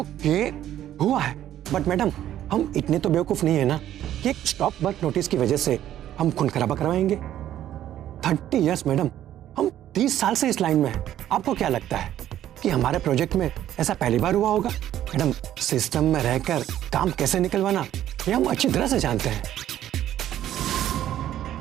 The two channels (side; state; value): left; quieter; 12.0 dB